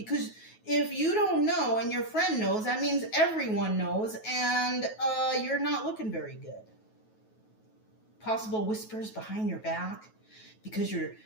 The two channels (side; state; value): right; late; 9.3 ms